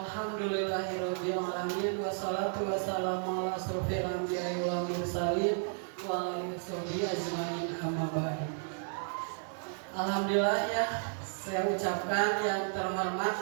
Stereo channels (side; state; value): left; silent; 56 dB below the other